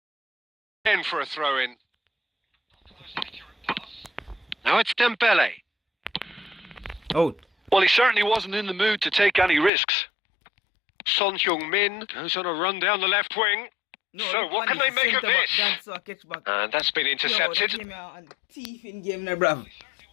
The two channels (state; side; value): drops out; right; at 9.7 s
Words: Again for a throw-in. Now it's Dembele. Out. Well, he certainly wasn't in the mood to take any risks. Son Heung-min goes on a run down the left wing. No, So what can they make of this? That's a catch back. And that's been intercepted. Yo, that thief in game now, bruv.